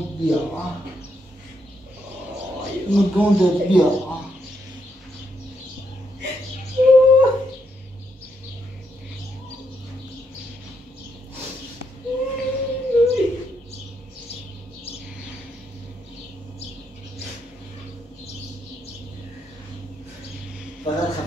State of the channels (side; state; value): both; normal; correlation 0.78